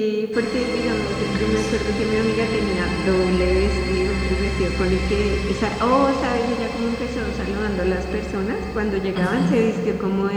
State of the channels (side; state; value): both; identical; correlation 1.00